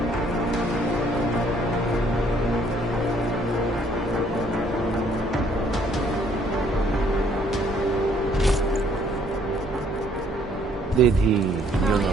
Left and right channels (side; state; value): both; normal; correlation 0.64